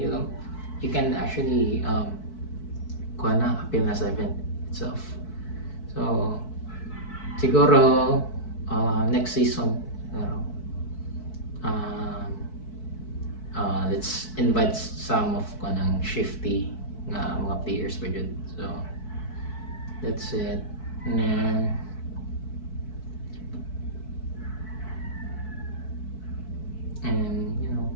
can actually appeal na sa event itself. So siguro next season let's invite some of kanang shifty nga mga players pa dyan. So that's it. And then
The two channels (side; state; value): right; late; 4.6 ms